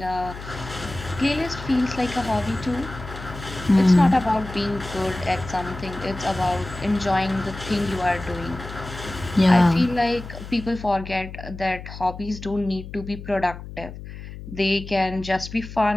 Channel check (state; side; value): noise; left; hum, 12 dB below the sound